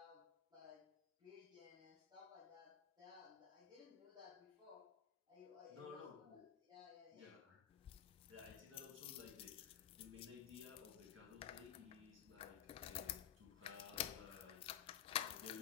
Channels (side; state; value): right; quieter; 9.7 dB